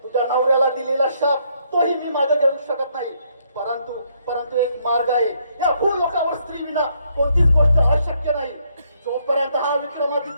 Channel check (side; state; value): both; inverted; correlation -0.72